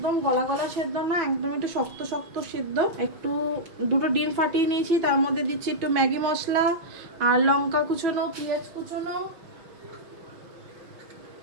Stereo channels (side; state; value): left; late; 5.8 ms